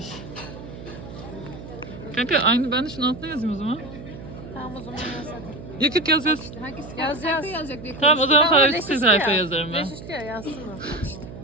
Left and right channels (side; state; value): right; noise; hum, 13 dB below the sound